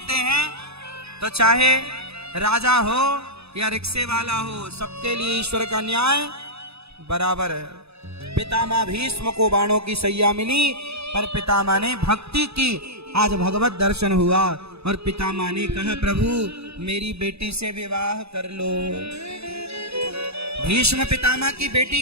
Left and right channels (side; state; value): left; late; 0.79 ms